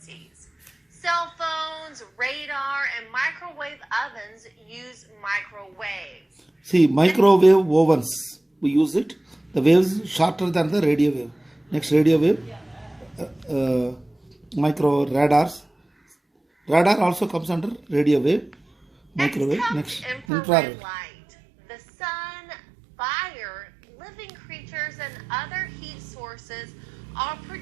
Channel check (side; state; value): left; drops out; at 20.2 s